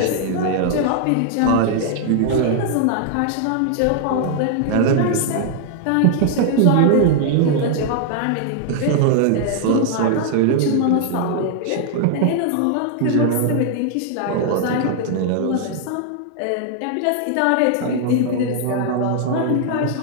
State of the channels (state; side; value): different; both; correlation 0.00